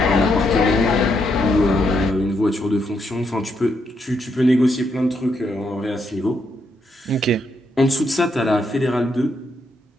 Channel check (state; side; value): normal; both; correlation 0.78